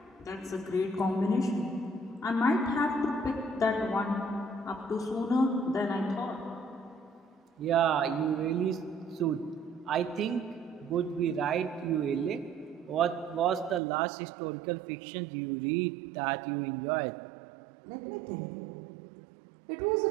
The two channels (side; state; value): left; drops out; at 13.8 s